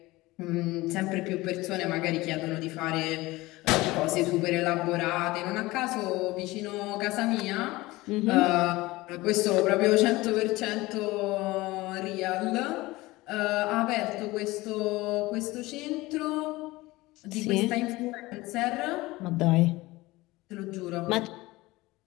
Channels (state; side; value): quieter; right; 20.0 dB